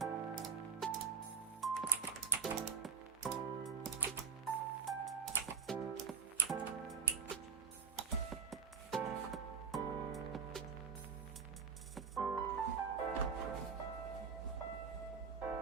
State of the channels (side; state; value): left; quieter; 5.9 dB